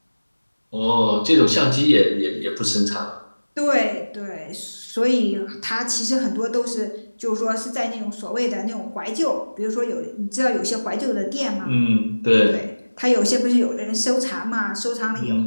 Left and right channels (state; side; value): inverted; both; correlation -1.00